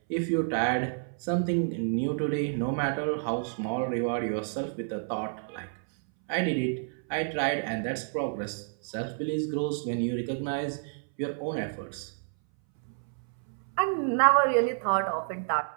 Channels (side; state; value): left; silent; 58 dB below the other